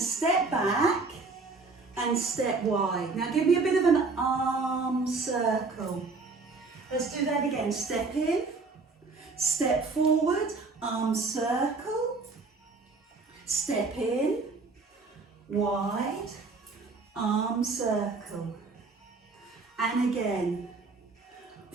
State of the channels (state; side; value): quieter; left; 4.0 dB